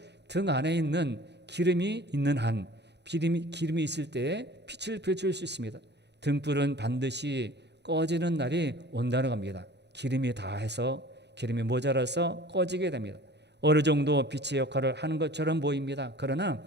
등 안에 있는 기름이 있는 한 기름이 있을 때 빛을 비출 수 있습니다. 등불은 반드시 꺼지는 날이 온다는 겁니다. 기름이 모자라서 꺼지게 됩니다. 어느 정도 빛의 역할을 하는 것처럼 보입니다. 그러나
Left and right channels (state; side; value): late; left; 0.50 ms